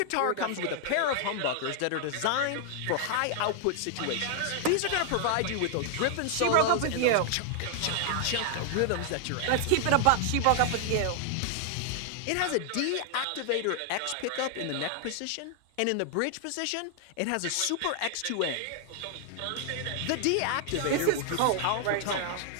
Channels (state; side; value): different; both; correlation 0.00